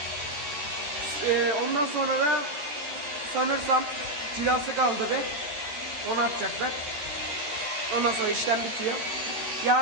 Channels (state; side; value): late; left; 13 ms